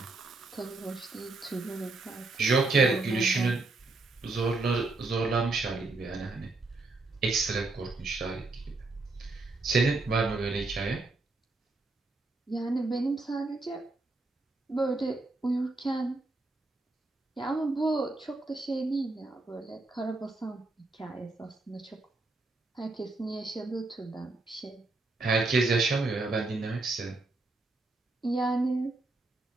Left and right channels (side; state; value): left; quieter; 3.3 dB